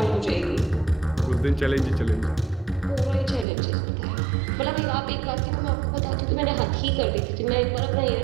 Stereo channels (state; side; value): drops out; left; at 3.5 s